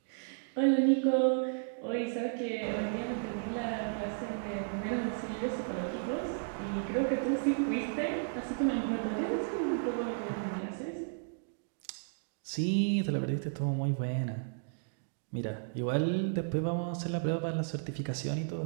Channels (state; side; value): silent; left; digital silence